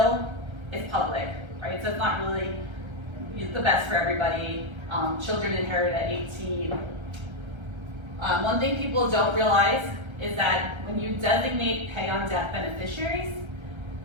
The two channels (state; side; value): late; left; 1.3 ms